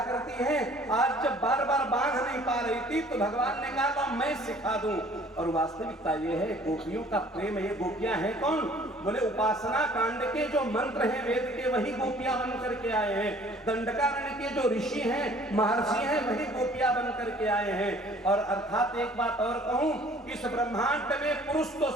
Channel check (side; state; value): both; normal; correlation 0.54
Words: करती है, आज जब बार बार बांध नहीं पा रही थी, तो भगवान ने कहा तो मैं सिखा दूं। और वास्तविकता ये है गोपियों का प्रेम, ये गोपियां हैं कौन? बोले उपासना कांड के जो मंत्र हैं वेद के, वही गोपियां बन करके आए हैं। दंडकारण्य के जो ऋषि हैं, महर्षि हैं, वही गोपियां बन करके आए हैं। और अर्थात एक बात और कहूं, इस ब्रह्मांड में पुरुष तो